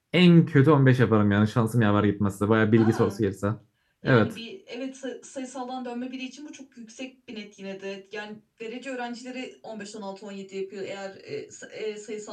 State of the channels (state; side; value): identical; both; correlation 1.00